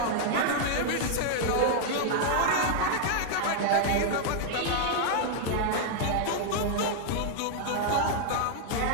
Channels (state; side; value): different; both; correlation 0.00